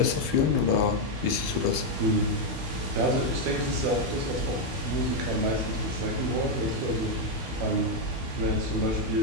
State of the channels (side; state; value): left; late; 12 ms